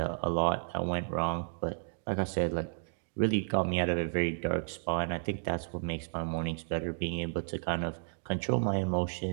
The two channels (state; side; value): silent; left; digital silence